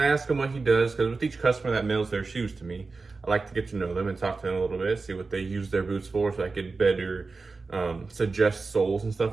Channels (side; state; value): left; quieter; 4.0 dB